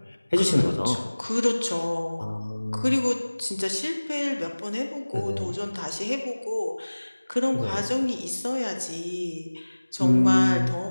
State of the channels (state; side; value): inverted; both; correlation -1.00